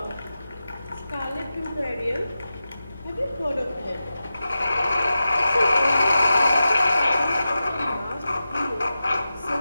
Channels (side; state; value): both; inverted; correlation -0.93